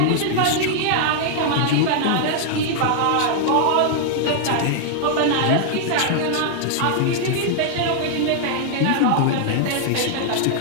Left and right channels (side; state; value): both; different; correlation 0.00